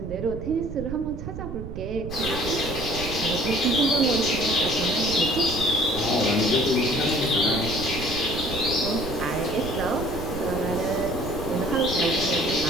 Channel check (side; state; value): right; noise; rumble, 8 dB below the sound